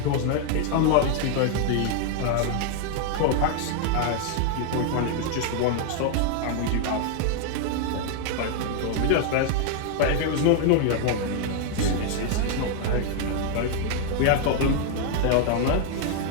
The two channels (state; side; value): different; both; correlation 0.00